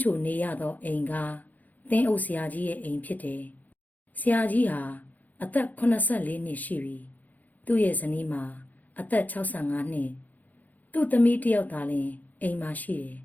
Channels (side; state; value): right; late; 0.082 ms